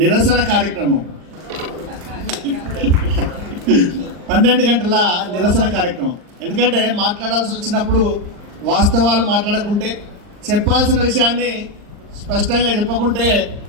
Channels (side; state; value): left; late; 39 ms